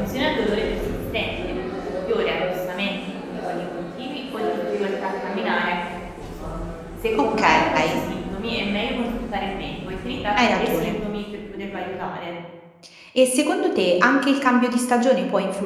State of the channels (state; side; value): identical; both; correlation 1.00